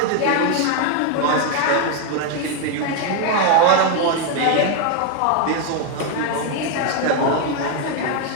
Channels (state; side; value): different; both; correlation 0.01